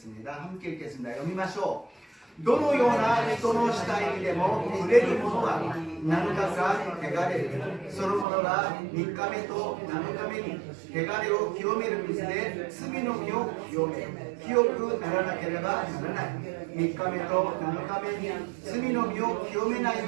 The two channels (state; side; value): drops out; left; at 8.2 s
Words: 함께 읽겠습니다. 読みましょう。どのような人の死体にでも触れるものは7日間汚れる。その者が3日目と7日目に汚れを清める水で罪の身を清める。清くならなければならない。3日目と7日目に罪の身を清めない